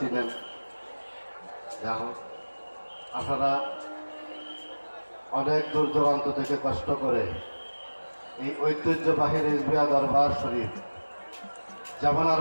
যা হোক, আপনারা অনেক দূর দূরান্ত থেকে কষ্ট করে এই ঐতিহ্যবাহী রেজবিয়া দরবার শরীফ জামানার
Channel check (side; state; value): both; inverted; correlation -1.00